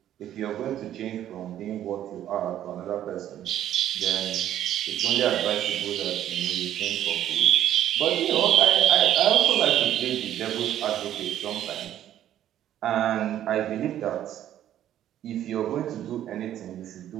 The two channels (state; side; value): quieter; left; 11.6 dB